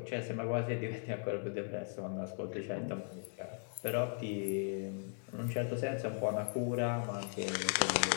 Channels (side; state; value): right; silent; 53 dB below the other